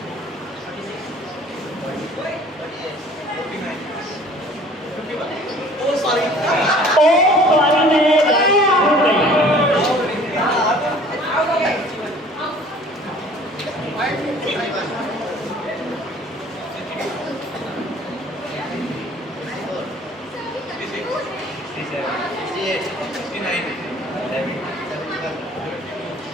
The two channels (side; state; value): both; normal; correlation 0.50